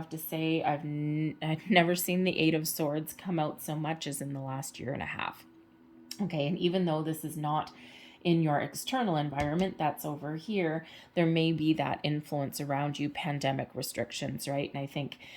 to say, I've never seen the Eight of Swords come out so much as in the last year and a half. Okay, and even though this is not in your external environment, that's over here, there may be that influence around you, pandemic restrictions, right? And I think,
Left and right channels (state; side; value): identical; both; correlation 1.00